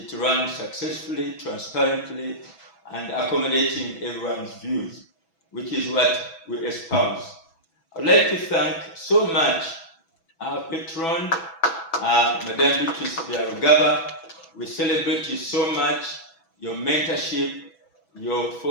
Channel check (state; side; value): late; right; 6.1 ms